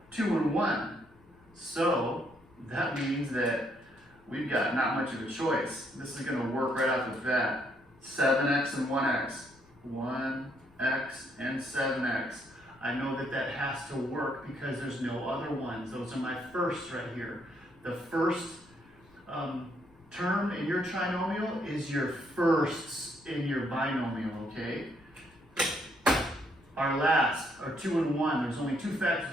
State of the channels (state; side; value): noise; left; rumble, 28 dB below the sound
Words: 2 and 1. So that means that we've got not much of a choice. This is going to work right off the bat. 7x and 1x. 1x and 7x. I know that has to work because there's no other ones. Those are my firsts right here. The first term in your trinomial is your firsts in your binomial, okay? Our last are 2 and 1. There's only 2